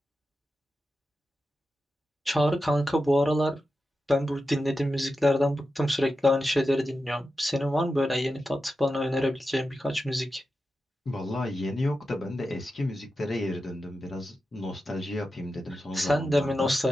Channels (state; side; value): normal; both; correlation 0.90